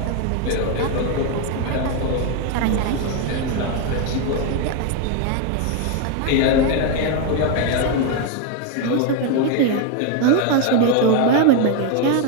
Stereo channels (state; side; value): different; both; correlation 0.01